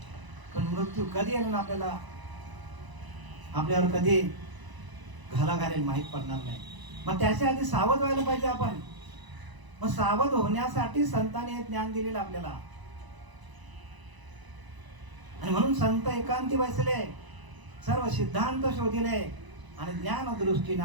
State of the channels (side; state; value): left; late; 1.0 ms